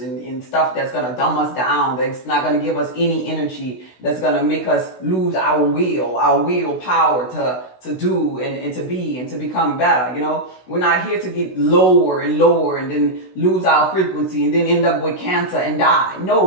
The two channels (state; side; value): late; right; 16 ms